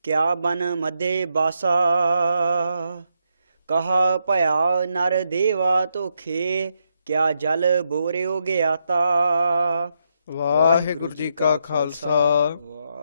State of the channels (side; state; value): both; inverted; correlation -0.81